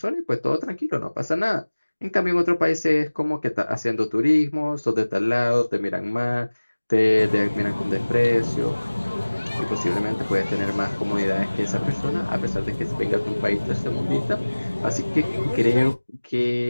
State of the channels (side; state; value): both; inverted; correlation -1.00